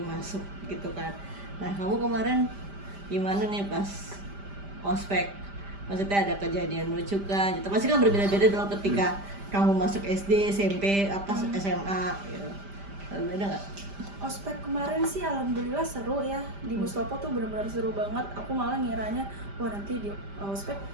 masuk gitu kan. Nah kamu kemarin gimana nih pas ospek? Maksudnya ada kejadian lucu kan? Gitu. Pasti kan berbeda-beda dong ketika kamu masuk SD, SMP, SMA gitu. Beda nggak? Ospek kemarin sih alhamdulillah seru ya, di Mustopo tuh benar-benar seru banget. Aku malah ngiranya wah nanti di ospek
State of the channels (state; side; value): late; left; 5.0 ms